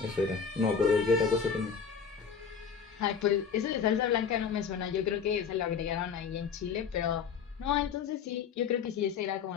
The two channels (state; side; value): quieter; right; 6.5 dB